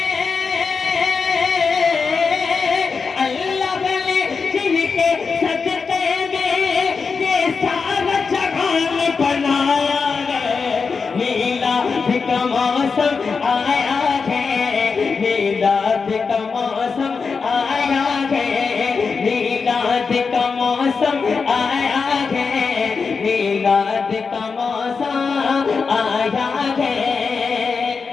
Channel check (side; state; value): right; quieter; 5.1 dB